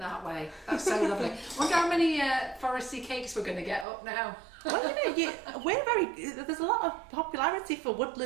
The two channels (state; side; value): drops out; left; at 3.9 s